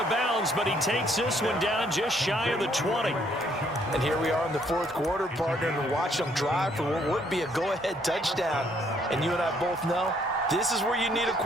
bounds, but he takes this one down just shy of the 20. And here we are in the fourth quarter, partner, and watch them drive for what would be a go-ahead touchdown. And you and I both know this is where you need a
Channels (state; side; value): normal; both; correlation 0.67